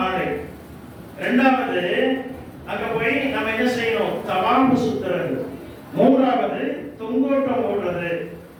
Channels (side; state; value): both; identical; correlation 1.00